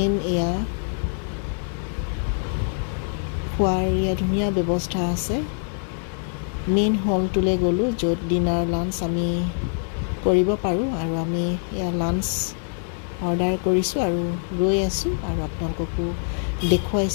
এয়া খোৱাৰ এয়া ধুনীয়া ব্যৱস্থা আছে। মেইন হলটোলৈ গ'লোঁ, য'ত ডিনাৰ লাঞ্চ আমি কৰিব পাৰোঁ আৰু আমি এয়া লাঞ্চ অৰ্ডাৰ কৰিছোঁ আৰু ৰৈ আছোঁ আৰু আপোনালোককো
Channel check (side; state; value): right; silent; digital silence